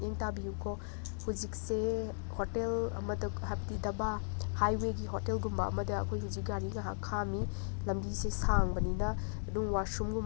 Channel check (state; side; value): silent; right; digital silence